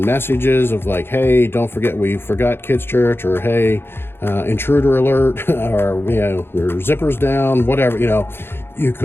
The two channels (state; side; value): late; right; 0.11 ms